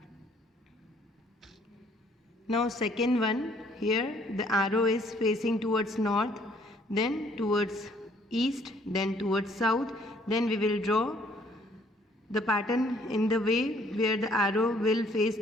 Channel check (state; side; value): normal; both; correlation 0.62